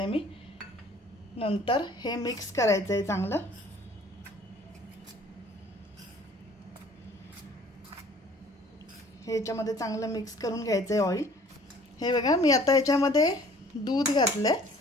मी। नंतर हे मिक्स करायचं आहे चांगलं। हे याच्यामध्ये चांगलं मिक्स करून घ्यायचं आहे ऑइल। हे बघा, मी आता याच्यामध्ये दूध घातलंय।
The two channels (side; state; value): both; normal; correlation 0.53